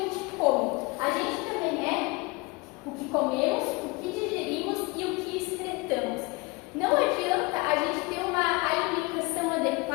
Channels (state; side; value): quieter; right; 25.4 dB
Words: come, a gente também é o que comemos, o que digerimos e o que excretamos. Não adianta a gente ter uma alimentação